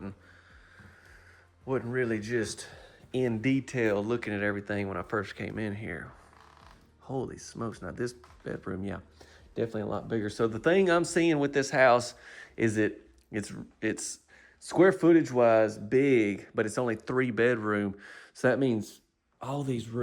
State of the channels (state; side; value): identical; both; correlation 1.00